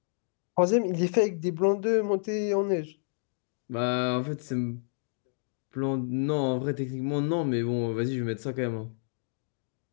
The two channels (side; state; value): right; silent; digital silence